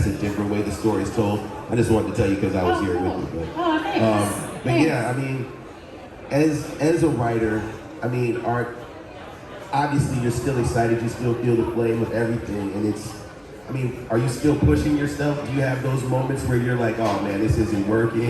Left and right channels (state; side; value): identical; both; correlation 1.00